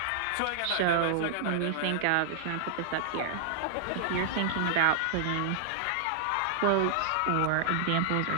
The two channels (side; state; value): both; different; correlation -0.01